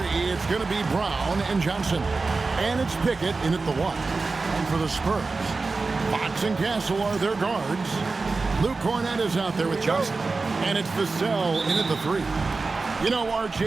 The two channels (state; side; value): quieter; left; 3.9 dB